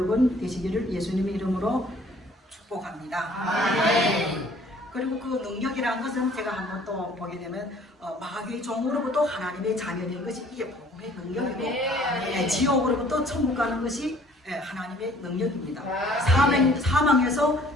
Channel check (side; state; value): both; normal; correlation 0.56